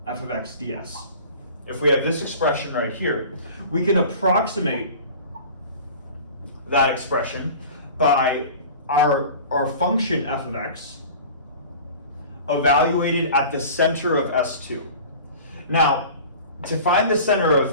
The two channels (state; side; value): inverted; both; correlation -0.40